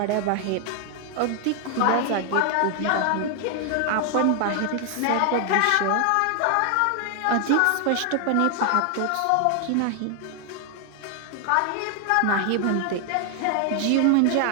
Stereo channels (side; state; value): both; different; correlation 0.00